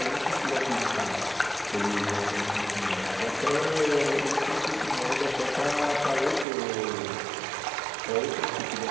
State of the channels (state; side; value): drops out; left; at 6.5 s